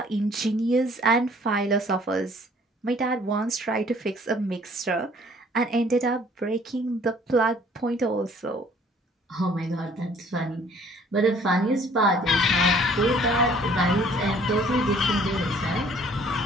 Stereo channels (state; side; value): normal; both; correlation 0.57